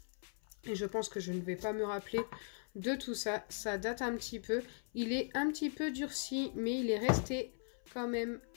Et je pense que je ne vais pas me rappeler de tout ça. Ça date un petit peu. Il est un petit peu durci, mais il est resté quand même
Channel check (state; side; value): silent; right; 52 dB below the other